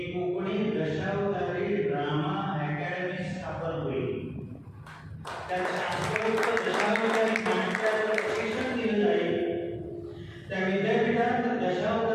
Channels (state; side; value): identical; both; correlation 1.00